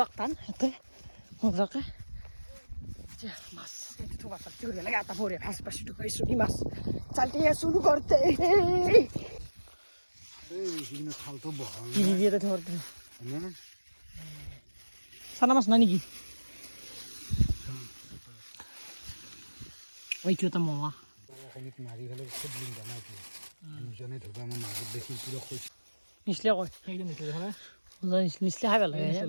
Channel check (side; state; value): both; inverted; correlation -1.00